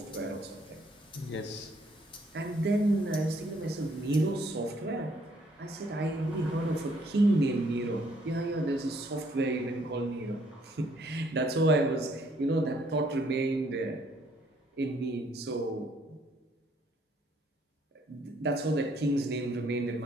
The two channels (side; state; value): both; normal; correlation 0.66